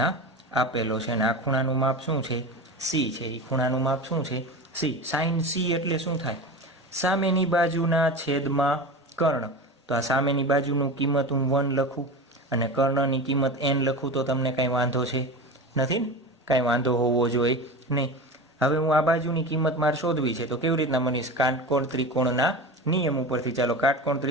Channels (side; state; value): both; normal; correlation 0.28